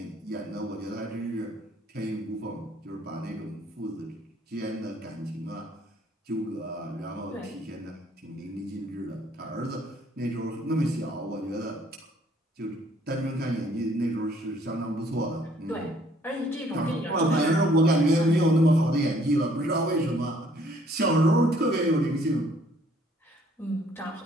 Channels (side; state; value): both; normal; correlation 0.61